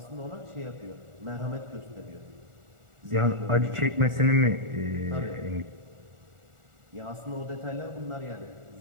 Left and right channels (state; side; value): late; left; 1.4 ms